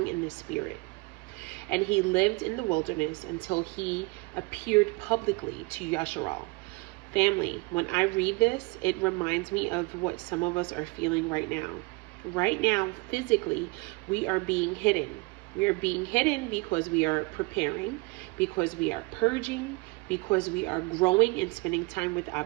in the spirit. And he lived in the wilderness until he appeared publicly to Yasharal." Family, when I read this, it reminds me of what some of us are feeling right now. Right now, physically, we are being hidden. We are being hidden because we are preparing, because we are purging, because we are growing and spending time with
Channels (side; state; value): left; quieter; 26.5 dB